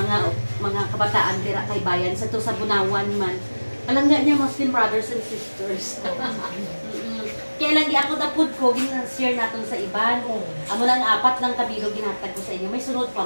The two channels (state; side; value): inverted; both; correlation -1.00